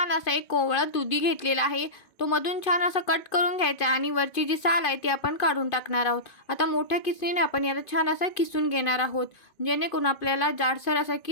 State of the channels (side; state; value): right; late; 2.5 ms